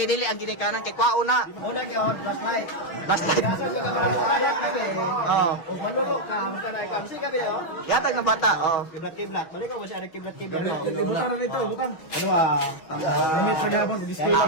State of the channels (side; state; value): right; late; 6.2 ms